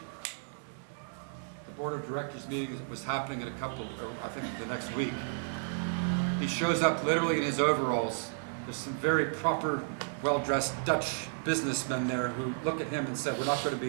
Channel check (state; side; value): silent; left; 56 dB below the other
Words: The board of directors meeting was happening in I think the next week. He shows up literally in his overalls. There's some very proper, well-dressed Dutch businessmen there who look at him and said, we're not going to